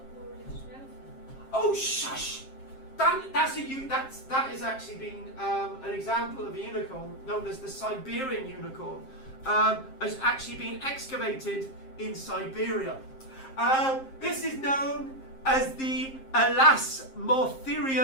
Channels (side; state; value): right; late; 7.5 ms